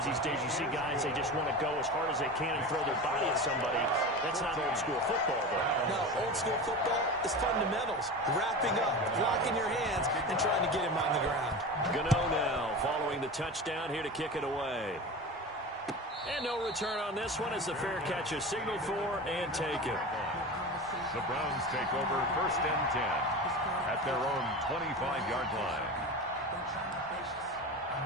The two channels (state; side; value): normal; both; correlation 0.29